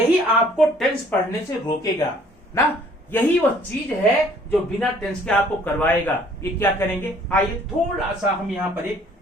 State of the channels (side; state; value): both; normal; correlation 0.58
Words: आपको टेंस पढ़ने से रोकेगा ना। यही वो चीज है जो बिना टेंस के आपको करवाएगा। ये क्या करेंगे, आइए थोड़ा सा हम यहां पर एक